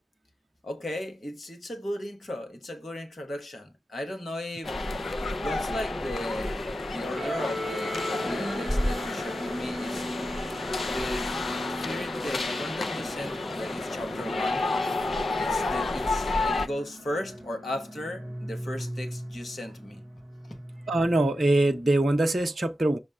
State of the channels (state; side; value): normal; both; correlation 0.89